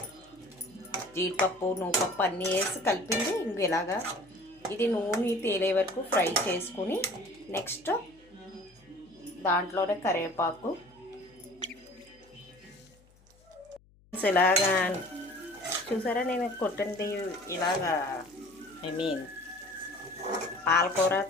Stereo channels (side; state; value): left; noise; hum, 29 dB below the sound